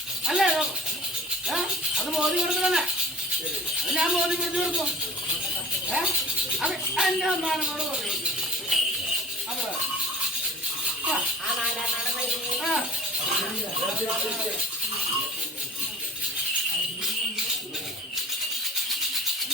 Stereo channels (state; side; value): normal; both; correlation 0.42